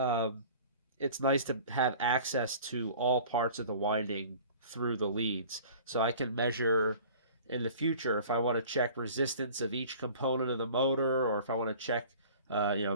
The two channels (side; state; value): both; inverted; correlation -0.45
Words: it's nice to have access to all parts of the winding through the leads, so I can measure in the future if I want to check resistance of each component of the motor, or if I want to check